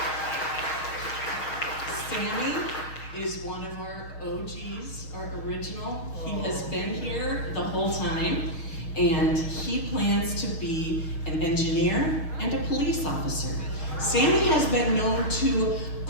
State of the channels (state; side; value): late; right; 6.3 ms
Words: Sammy is one of our OGs, our original. He has been here the whole time, and he plans to be an engineer and a police officer. Sammy has been known to